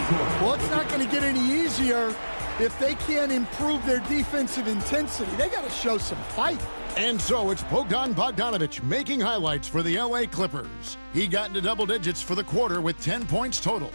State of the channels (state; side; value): inverted; both; correlation -1.00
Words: Well, it's not going to get any easier if they can't improve their defensive intensity. They got to show some fight. And so it's Bogdan Bogdanović making highlights for the LA Clippers. He got into double digits for the quarter with 10 points total.